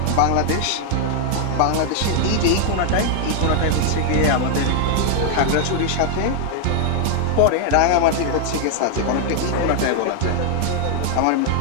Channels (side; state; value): both; different; correlation 0.00